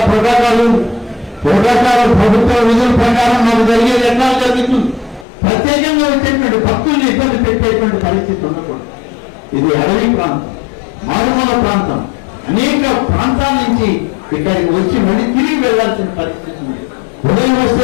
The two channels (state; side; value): drops out; right; at 5.2 s